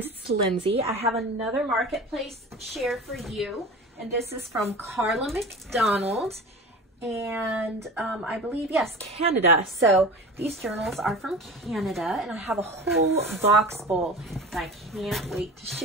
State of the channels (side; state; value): both; normal; correlation 0.34